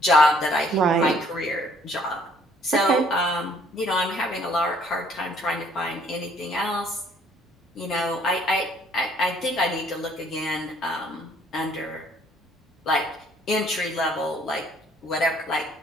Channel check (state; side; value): normal; both; correlation 0.61